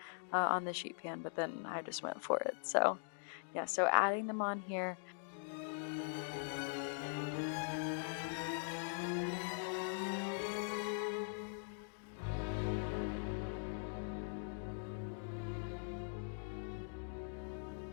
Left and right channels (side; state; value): right; silent; digital silence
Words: on the sheet pan, but then I just went for it. So yeah, so adding them on here.